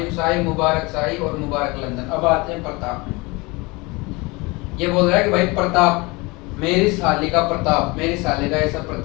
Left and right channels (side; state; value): right; quieter; 25.1 dB